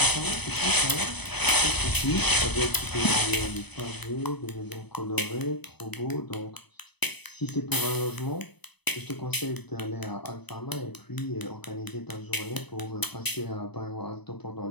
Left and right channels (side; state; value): right; late; 0.99 ms